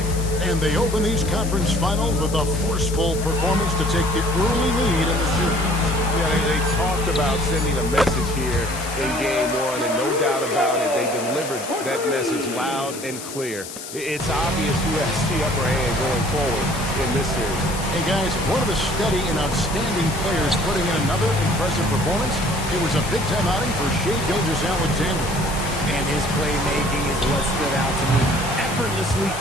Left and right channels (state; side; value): noise; left; hiss, 11 dB below the sound